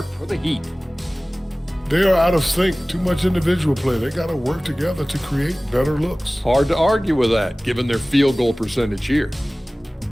for the Heat. They are out of sync. Too much individual play. They got to work together to create better looks. Hard to argue with that, given their field goal percentage here.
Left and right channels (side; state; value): both; normal; correlation 0.98